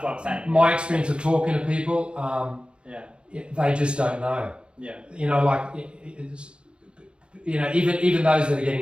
what I'm saying. My experience of talking to people, they just don't know. Even those that are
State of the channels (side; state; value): left; late; 0.055 ms